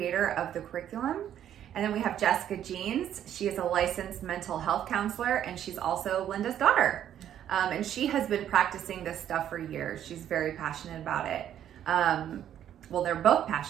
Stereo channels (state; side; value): quieter; left; 10.5 dB